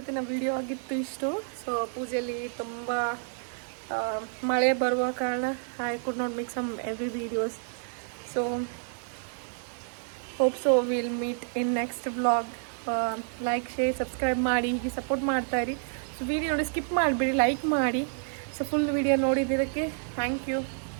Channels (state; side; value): silent; left; 58 dB below the other